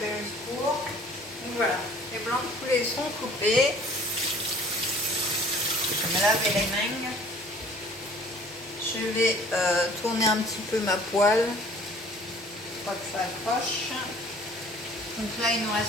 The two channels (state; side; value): normal; both; correlation 0.52